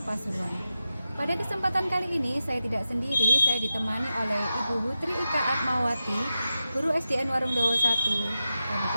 Pasuruan. Pada kesempatan kali ini saya tidak sendiri, saya ditemani oleh Ibu Hutri Ika Atmawati, guru SDN Warungdowo 1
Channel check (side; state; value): both; inverted; correlation -0.91